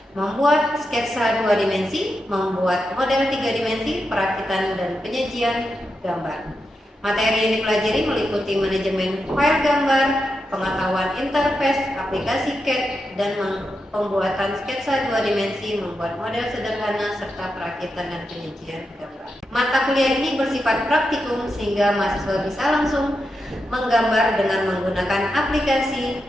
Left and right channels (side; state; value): both; normal; correlation 0.87